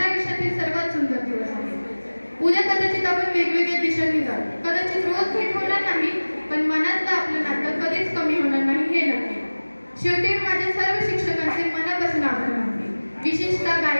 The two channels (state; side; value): inverted; both; correlation -1.00